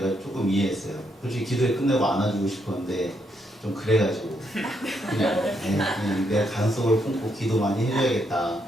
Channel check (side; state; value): both; normal; correlation 0.77